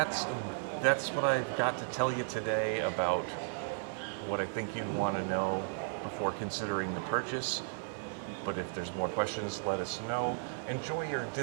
what I've got to tell you today about what I think you'd want to know before considering the purchase. But if there's more questions, let us know. Enjoy your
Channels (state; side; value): silent; left; digital silence